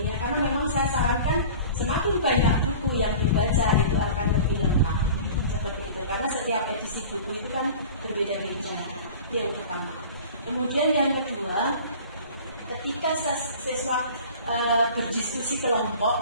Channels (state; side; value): inverted; both; correlation -0.41